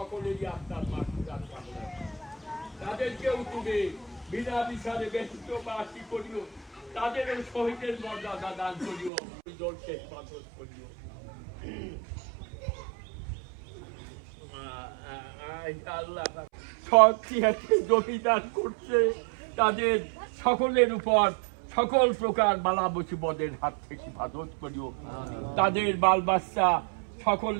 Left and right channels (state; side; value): drops out; left; at 9.1 s